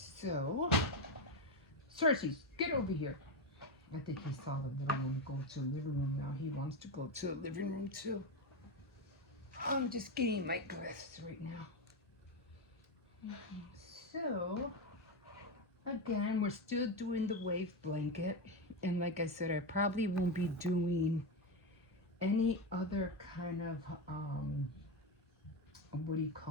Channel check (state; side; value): normal; both; correlation 0.12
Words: Cersei, get over here. I think he saw the little one go to the living room. Now he wants to go to the living room too. I'm just getting my glasses right now. So, again, we're still doing the wave blanket. And like I said, I probably won't be doing any other kind of, what do you